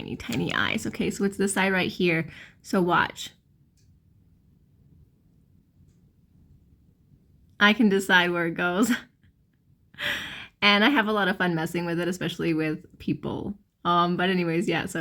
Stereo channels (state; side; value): identical; both; correlation 1.00